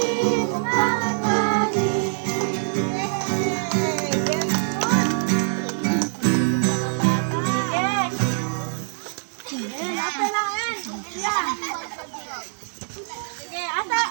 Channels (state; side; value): silent; left; digital silence